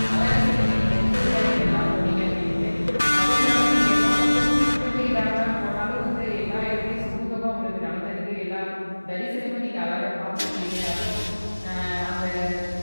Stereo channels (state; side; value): inverted; both; correlation -1.00